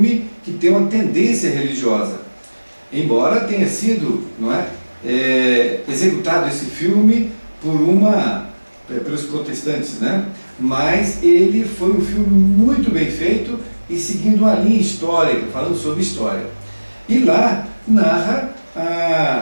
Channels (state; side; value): inverted; both; correlation -1.00